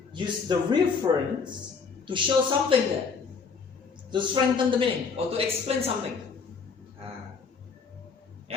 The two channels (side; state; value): right; quieter; 5.4 dB